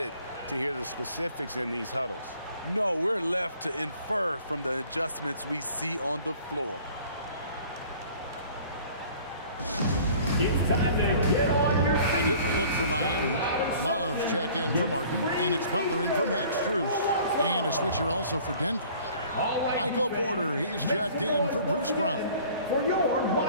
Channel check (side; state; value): both; inverted; correlation -0.50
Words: to hear the specifics in these huddles. No, we're left to infer from the adjustments we see on the floor. It's time to get on your feet. A different look for Miami. Love's checked in for Martin, and it's Butler in for Max Strus. And a switcher also for Denver. Michael Porter, he's checked in for Bruce Brown. For your